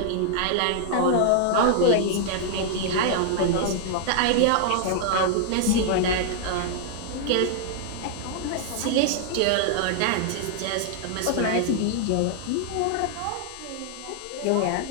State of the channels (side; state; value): both; different; correlation -0.01